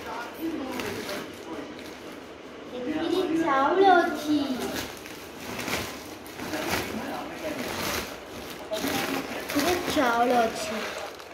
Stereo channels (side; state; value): both; identical; correlation 1.00